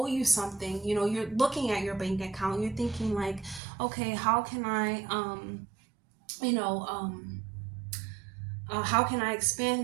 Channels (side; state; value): left; drops out; at 3.6 s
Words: you something, you're looking at your bank account, you're thinking like, okay, how can I you know how can I